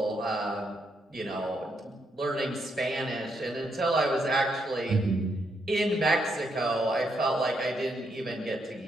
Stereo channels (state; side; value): normal; both; correlation 0.78